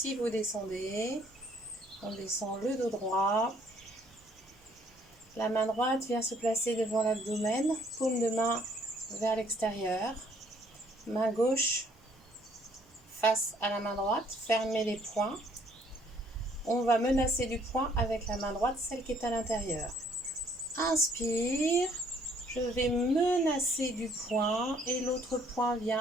vous descendez, on descend le dos droit. La main droite vient se placer devant l'abdomen, paume de main vers l'extérieur. Main gauche face à la main droite, fermez les poings. On va menacer du poing avec la main droite, celle qui est à l'intérieur. Inspire, je vais menacer du poing et l'autre poing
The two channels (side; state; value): both; normal; correlation 0.63